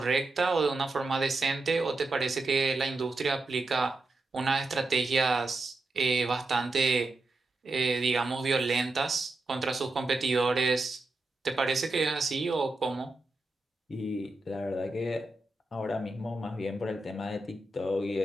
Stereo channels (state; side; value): quieter; left; 3.0 dB